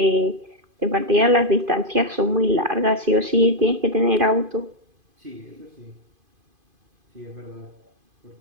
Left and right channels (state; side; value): late; left; 2.5 ms